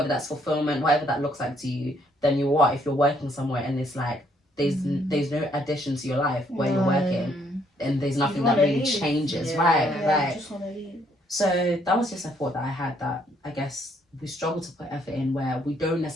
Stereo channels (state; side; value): normal; both; correlation 0.69